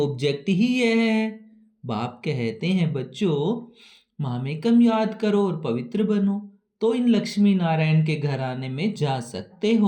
ही यह है। बाप कहते हैं, बच्चों मामे कम याद करो और पवित्र बनो, तो इन लक्ष्मी नारायण के घराने में जा सकते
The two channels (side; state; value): both; identical; correlation 1.00